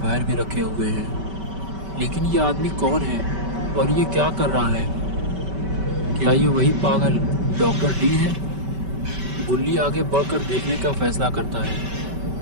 पैर भी रखे हुए हैं। लेकिन ये आदमी कौन है और ये क्या कर रहा है? क्या ये वही पागल डॉक्टर डी है? गुल्ली आगे बढ़कर देखने का फैसला करता है।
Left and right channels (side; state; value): left; late; 5.2 ms